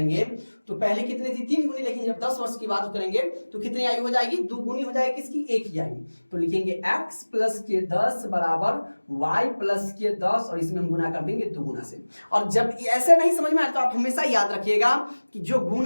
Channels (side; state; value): both; inverted; correlation -1.00